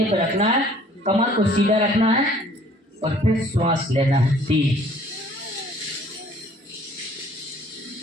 पर रखना है, कमर को सीधा रखना है और फिर श्वास लेना है 3।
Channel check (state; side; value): normal; both; correlation 0.56